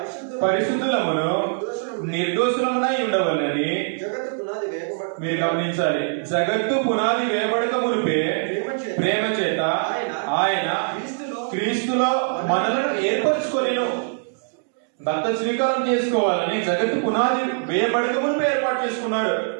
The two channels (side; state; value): left; silent; digital silence